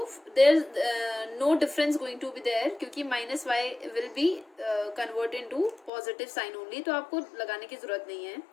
there no difference going to be there, क्योंकि minus Y will be convert into positive sign only, तो आपको लगाने की जरूरत नहीं है.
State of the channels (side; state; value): right; drops out; at 5.9 s